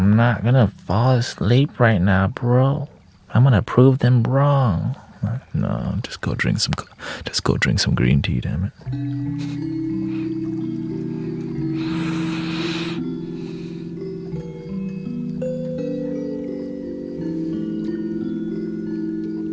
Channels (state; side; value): identical; both; correlation 1.00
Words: not gonna fall asleep right now, bro. I'm gonna prove them wrong. No, just go drink some green tea, damn it.